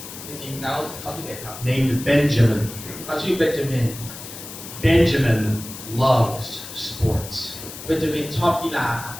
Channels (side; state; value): left; noise; hiss, 12 dB below the sound